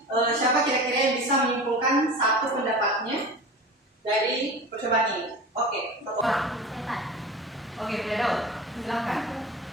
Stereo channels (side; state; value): both; normal; correlation 0.34